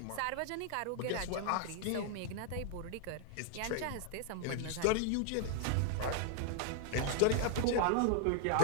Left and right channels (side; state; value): both; different; correlation 0.00